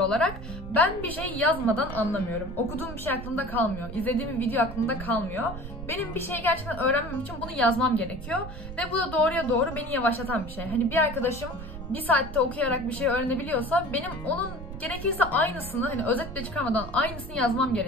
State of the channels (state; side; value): noise; right; rumble, 10 dB below the sound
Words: olarak. Ben bir şey yazmadan anlamıyorum. Okuduğum bir şey aklımda kalmıyor. İzlediğim bir video aklımda kalmıyor. Benim bir şeyi gerçekten öğrenmem için bunu yazmam gerekiyor. Ve bu da doğruya doğru beni yavaşlatan bir şey. Hani bir arkadaşım bir saatte okuyarak bir şey öğrenebiliyorsa benim onun gerekirse aynısını, hani özet bile çıkarmadan aynısını yazmam